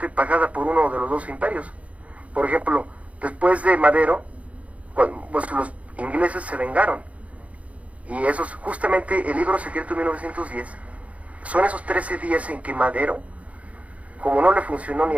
pagada por uno de los dos imperios. Por ejemplo, después de Madero, pues los ingleses se vengaron. Y esos, justamente el libro secreto de 1910, son esos 13 días en que Madero, como no le funcionó ni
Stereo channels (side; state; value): left; late; 0.066 ms